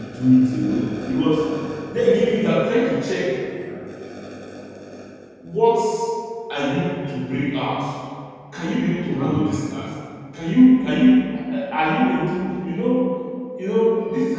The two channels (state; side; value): identical; both; correlation 1.00